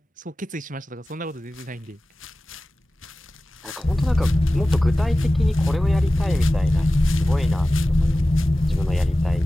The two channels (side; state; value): both; normal; correlation 0.96